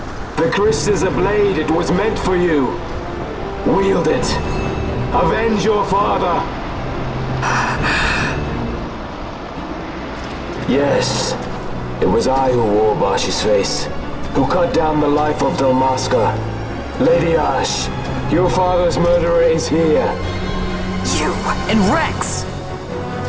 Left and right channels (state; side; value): identical; both; correlation 1.00